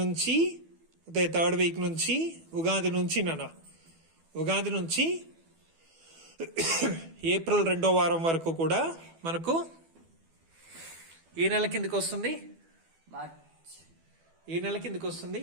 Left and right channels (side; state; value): left; late; 12 ms